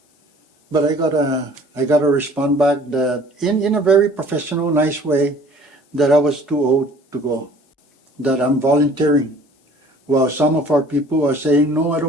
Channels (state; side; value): normal; both; correlation 0.51